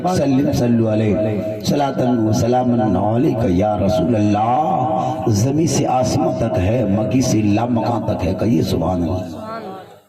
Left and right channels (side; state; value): both; identical; correlation 1.00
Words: सल्लिम सल्लु अलैहि सलातन व सलामन अलैका या रसूल अल्लाह। ज़मीन से आसमां तक है, मकी से लामकां तक है, कहिए सुभान अल्लाह।